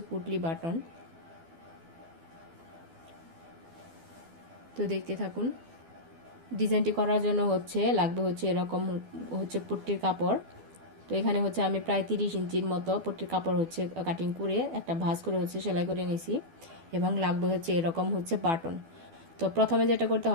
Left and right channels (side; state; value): left; late; 12 ms